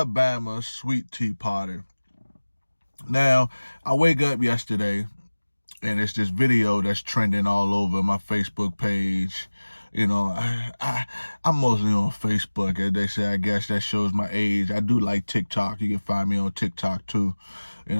Sweet Tea Party. Now, I wake up yesterday, and it's this video that's trending all over my Facebook page. You know, I'm mostly on Facebook, as they say. I guess that shows my age. I do like TikTok. You can find me on TikTok, too. You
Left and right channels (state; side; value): inverted; both; correlation -1.00